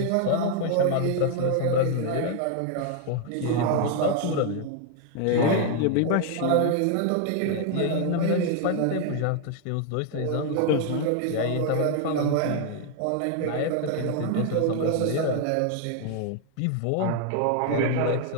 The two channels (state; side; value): different; both; correlation 0.00